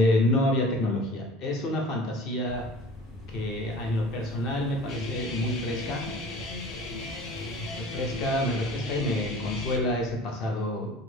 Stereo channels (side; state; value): both; normal; correlation 0.43